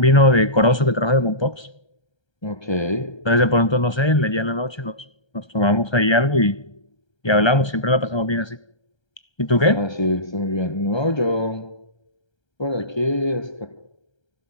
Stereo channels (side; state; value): right; late; 1.3 ms